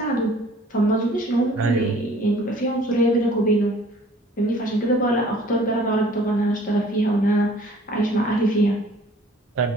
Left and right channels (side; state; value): both; normal; correlation 0.53